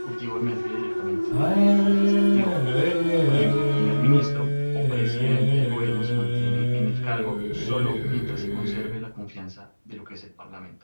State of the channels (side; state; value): both; inverted; correlation -1.00